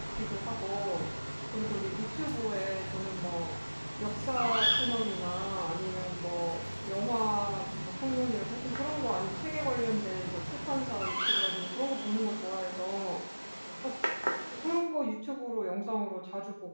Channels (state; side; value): inverted; both; correlation -1.00